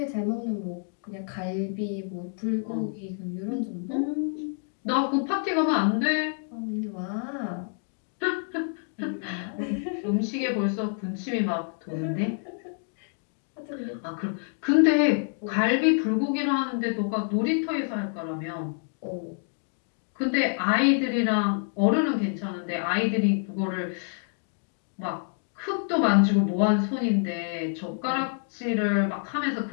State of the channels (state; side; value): silent; right; 60 dB below the other